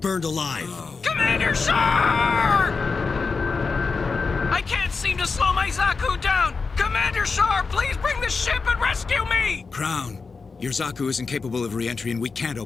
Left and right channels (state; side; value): quieter; right; 4.6 dB